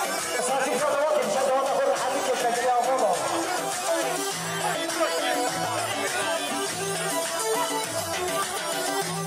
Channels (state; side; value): identical; both; correlation 1.00